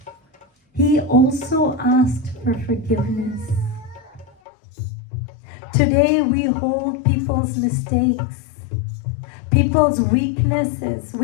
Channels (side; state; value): right; drops out; at 4.4 s